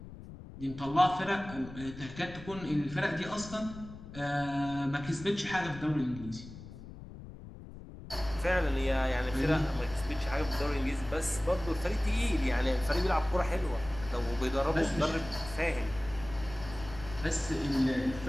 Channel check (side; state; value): left; noise; rumble, 14 dB below the sound